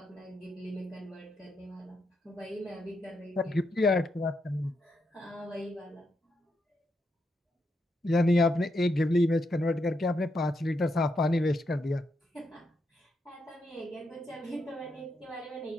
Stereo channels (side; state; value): both; normal; correlation 0.81